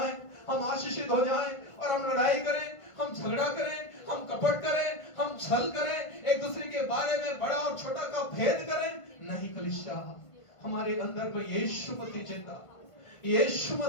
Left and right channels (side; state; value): right; late; 1.5 ms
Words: हम आशीषित हो जाएं और हम लड़ाई करें, हम झगड़ा करें, हम कपट करें, हम छल करें, एक दूसरे के बारे में बड़ा और छोटा का भेद करें? नहीं कलीसिया, हमारे अंदर में यीशु मसीह जिंदा, यीशु